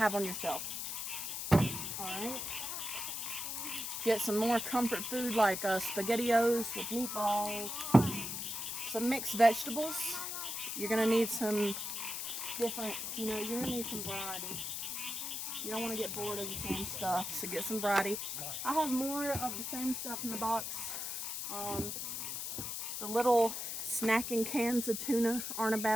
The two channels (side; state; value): left; noise; hiss, 4 dB below the sound